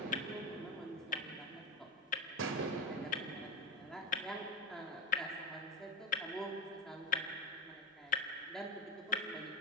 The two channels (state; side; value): normal; both; correlation 0.15